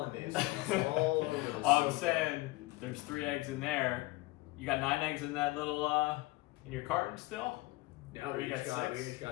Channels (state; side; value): quieter; right; 21.1 dB